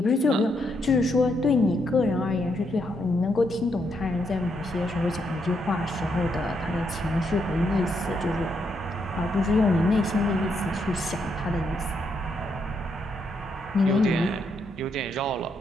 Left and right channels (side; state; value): both; normal; correlation 0.77